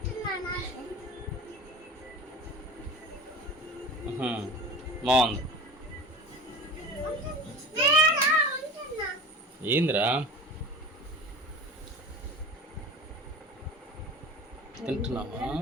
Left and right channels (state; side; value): normal; both; correlation 0.36